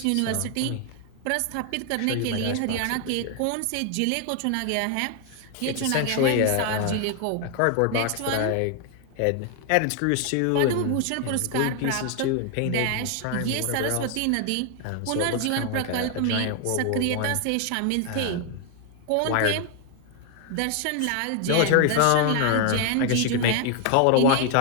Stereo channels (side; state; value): both; different; correlation 0.00